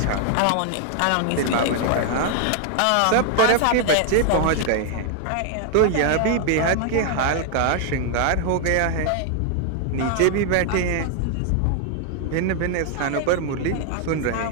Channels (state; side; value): different; both; correlation 0.00